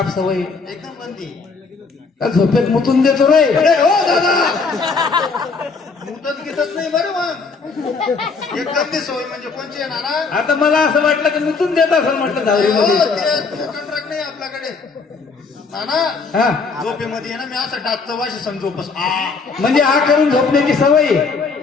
सवय. एकदम गंदी. का झोपेत मुतून देतो रे? अरे हो दादा मुदत घेतच नाही बरं मग. एक गंदी सवय म्हणजे कोणची आहे नाना? आता मला असं वाटलं की मुतून देत असं म्हटलं हो, झाडीमध्ये. ते कॉन्ट्रॅक्ट नाही आपल्याकडे नाना. हा झोपेमध्ये आहे ना मी असं डाकचं वाशी समजोपस म्हणजे हा करून झोपण्याची सवय.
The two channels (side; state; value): right; quieter; 4.6 dB